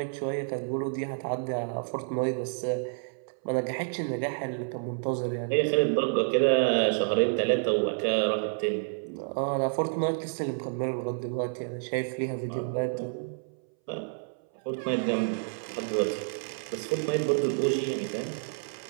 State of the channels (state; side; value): silent; left; 58 dB below the other